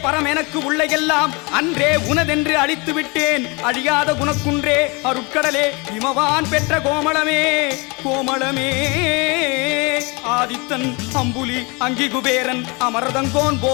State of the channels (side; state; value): right; quieter; 28.6 dB